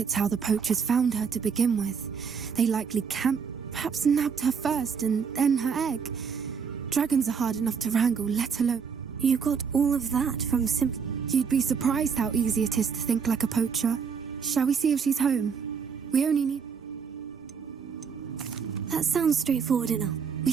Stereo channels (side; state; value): left; quieter; 6.3 dB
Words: how the poachers found her to begin with. They likely camped, perhaps nabbed her first and then her egg. Dragons are hard enough to wrangle, let alone... You got all of that from You'd be surprised how easy it is to think like a poacher. Shall we see if she's home? We only need... That sounds straightforward enough. We